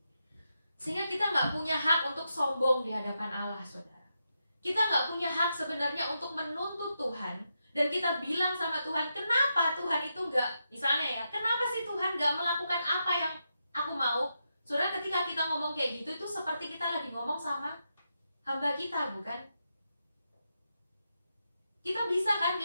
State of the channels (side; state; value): both; inverted; correlation -0.85